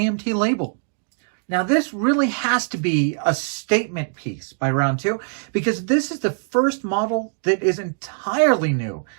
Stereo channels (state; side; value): silent; left; digital silence